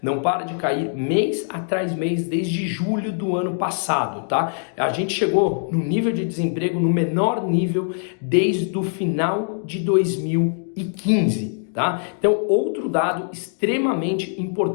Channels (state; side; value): silent; right; 64 dB below the other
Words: Não para de cair mês atrás mês desde julho do ano passado, tá? A gente chegou no nível de desemprego no menor nível desde o final de 2015. Tá? Então, outro dado extremamente